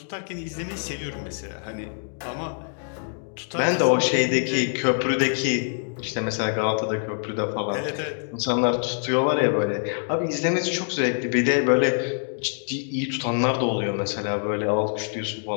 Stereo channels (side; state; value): right; silent; 62 dB below the other